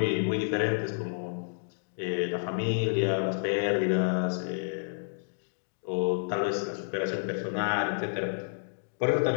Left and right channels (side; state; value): right; silent; digital silence